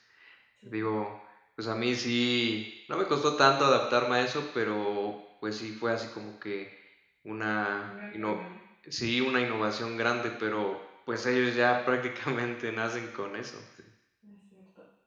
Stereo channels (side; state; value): both; identical; correlation 1.00